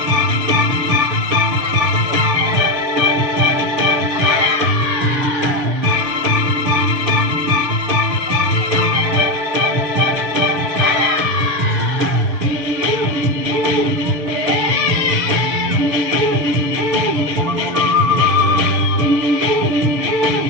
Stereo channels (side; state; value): left; late; 7.0 ms